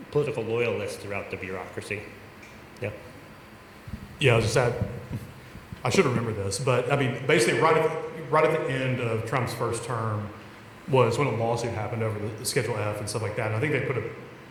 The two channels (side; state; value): both; identical; correlation 1.00